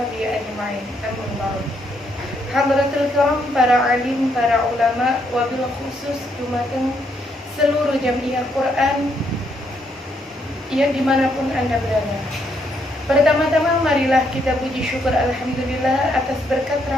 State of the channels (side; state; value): both; normal; correlation 0.74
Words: ajma'in. Amma ba'd. Hadratul kiram, para alim, para ulama, wabil khusus dumateng seluruh jamiah Quran yang dimanapun Anda berada. Pertama-tama marilah kita puji syukur alhamdulillah atas berkat